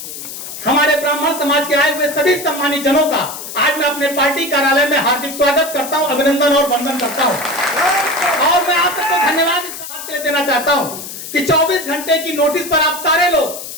हमारे ब्राह्मण समाज के आए हुए सभी सम्मानित जनों का आज मैं अपने पार्टी कार्यालय में हार्दिक स्वागत करता हूं, अभिनंदन और वंदन करता हूं। और मैं आप सबको धन्यवाद इस बात के लिए देना चाहता हूं कि 24 घंटे की नोटिस पर आप सारे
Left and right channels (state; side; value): noise; left; hiss, 10 dB below the sound